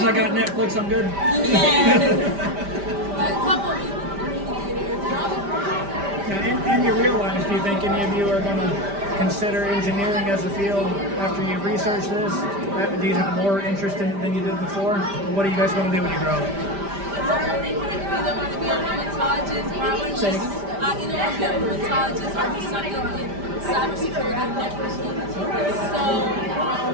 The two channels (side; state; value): left; late; 5.1 ms